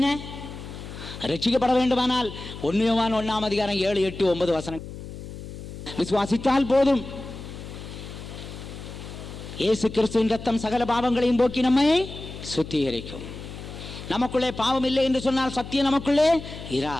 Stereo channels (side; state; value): left; noise; hum, 11 dB below the sound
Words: ரட்சிக்கப்பட வேண்டுமானால் 1 யோவான் 1 அதிகாரம் 7, 8, 9 வசனங்கள் விசுவாசித்தால் போதும். இயேசு கிறிஸ்துவின் ரத்தம் சகல பாவங்களையும் போக்கி நம்மை சுத்திகரிக்கும். நமக்குள்ளே பாவம் இல்லை என்று சொன்னால் சத்தியம் நமக்குள்ளே